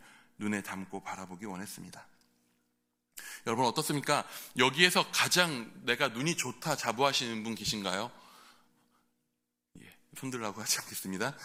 눈에 담고 바라보기 원했습니다. 여러분 어떻습니까? 여기에서 가장 내가 눈이 좋다 자부하시는 분 계신가요? 손들라고 하지 않겠습니다.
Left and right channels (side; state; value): both; identical; correlation 1.00